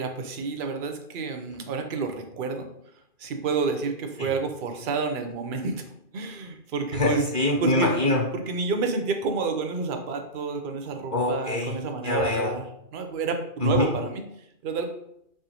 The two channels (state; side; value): late; left; 2.4 ms